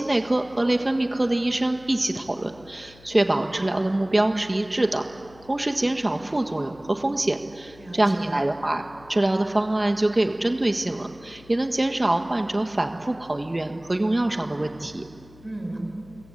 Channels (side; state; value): left; noise; hum, 24 dB below the sound